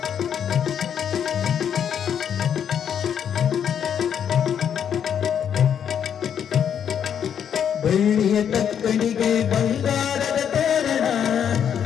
ಬೆಳ್ಳಿಯ ತಕ್ಕಡಿಗೆ ಬಂಗಾರದ ತೋರಣ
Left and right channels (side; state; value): right; quieter; 8.5 dB